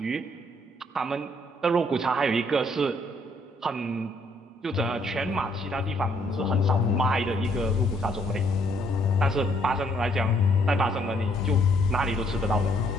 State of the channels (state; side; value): normal; both; correlation 0.68